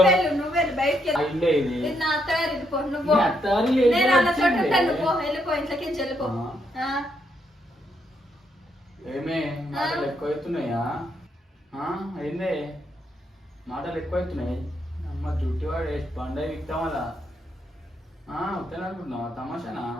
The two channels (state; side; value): normal; both; correlation 0.77